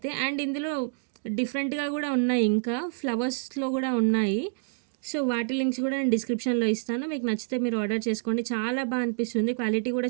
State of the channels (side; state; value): left; silent; digital silence